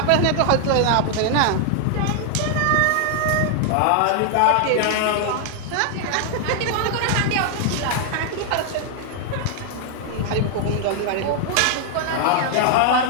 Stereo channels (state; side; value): different; both; correlation 0.00